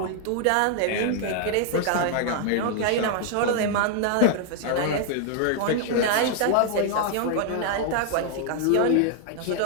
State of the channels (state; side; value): different; both; correlation 0.00